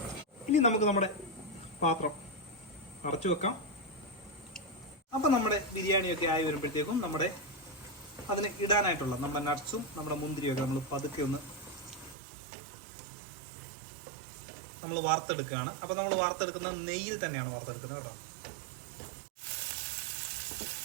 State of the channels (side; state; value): left; drops out; at 12.2 s